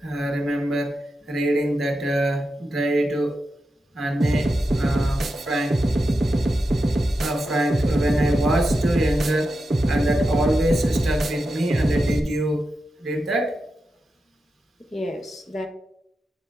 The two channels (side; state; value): both; normal; correlation 0.89